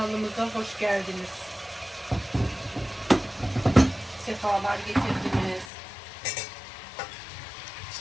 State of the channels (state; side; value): drops out; right; at 5.7 s